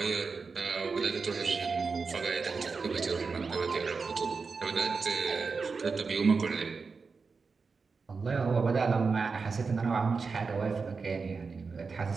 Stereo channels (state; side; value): quieter; left; 4.8 dB